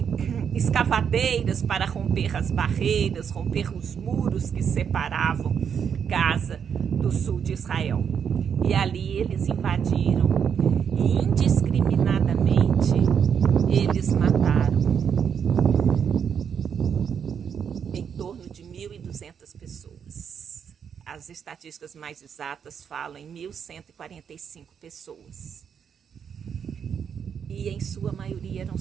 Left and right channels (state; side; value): quieter; left; 7.5 dB